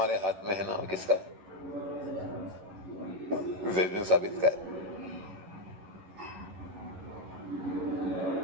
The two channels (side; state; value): left; late; 11 ms